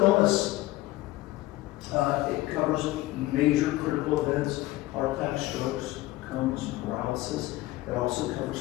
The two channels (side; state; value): right; quieter; 17.6 dB